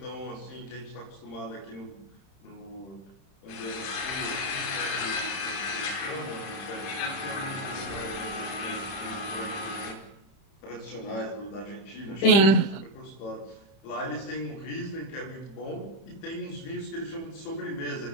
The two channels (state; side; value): late; right; 31 ms